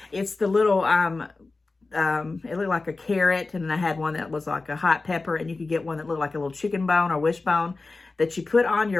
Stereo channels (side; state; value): right; quieter; 3.6 dB